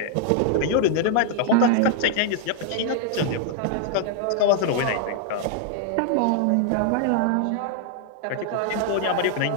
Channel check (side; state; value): both; different; correlation 0.00